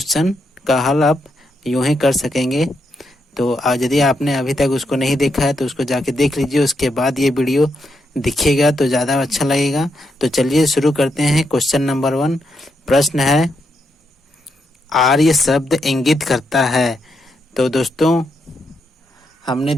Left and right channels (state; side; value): normal; both; correlation 0.81